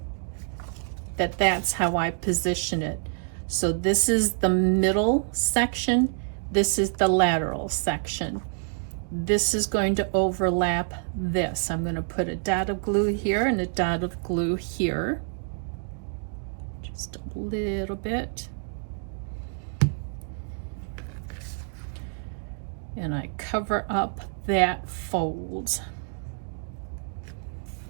that that's how I position it. So this is the middle section, this is the lateral section. This is going to overlap this. I'm going to put a dot of glue here and a dot of glue here. Just a little bit. And I cover up that fold.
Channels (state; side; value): silent; left; digital silence